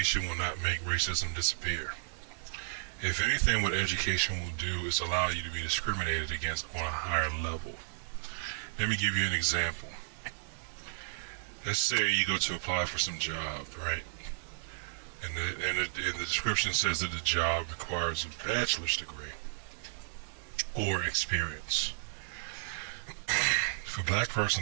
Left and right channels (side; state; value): left; silent; digital silence